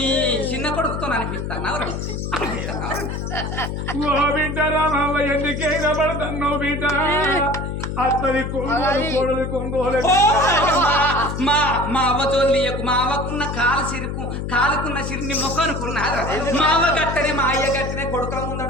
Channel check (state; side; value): noise; left; hum, 4 dB below the sound